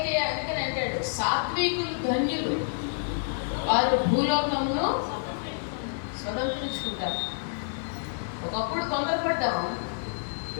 అందుకని అంటాడు సాత్వికులు ధన్యులు, వారు భూలోకమును స్వతంత్రించుకుంటారు. ఒకప్పుడు తొందరపడ్డాము,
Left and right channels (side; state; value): right; silent; digital silence